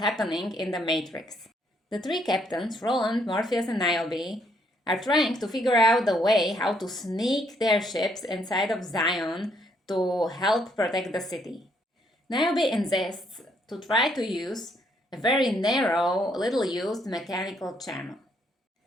in the Matrix. The 3 captains, Roland, Morpheus, and Niobe, are trying to figure out the way how to sneak their ships inside of Zion to help protect the city. Niobe insists to try to use a very narrow, little-used mechanical channel.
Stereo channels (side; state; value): both; normal; correlation 0.70